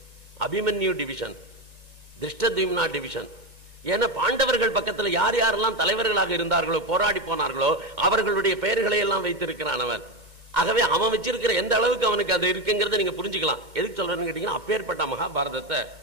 Abhimanyu division, Dhrishtadyumna division. ஏன்னா பாண்டவர்கள் பக்கத்தில் யார் யாரெல்லாம் தலைவர்களாக இருந்தார்களோ, போராடி போனார்களோ, அவர்களுடைய பெயர்களை எல்லாம் வைத்திருக்கிறான் அவன். ஆகவே அவன் வச்சிருக்கிற எந்த அளவுக்கு அவனுக்கு அது இருக்குங்கிறத நீங்க புரிஞ்சுக்கலாம். எதுக்கு சொல்றேன்னு கேட்டீங்கன்னா, அப்பேற்பட்ட மகாபாரதத்தை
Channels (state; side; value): late; left; 1.9 ms